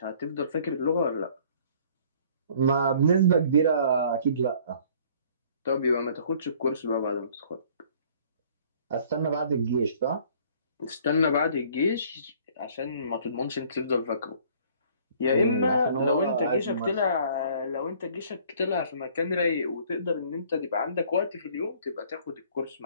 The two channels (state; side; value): inverted; both; correlation -0.55